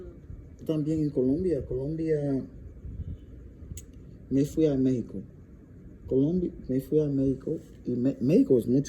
También en Colombia, me fui a México. Me fui a México y México es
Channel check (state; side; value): identical; both; correlation 1.00